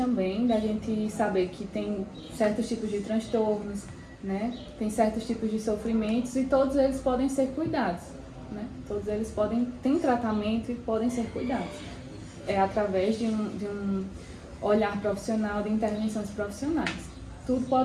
da gente saber que tem certos tipos de transtornos, né? Tem certos tipos de sofrimentos e todos eles podem ser cuidados, né? Todos eles têm tratamento e podem ser cuidados. É através de um olhar profissional, de intervenções profissionais. Tudo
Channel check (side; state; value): both; identical; correlation 1.00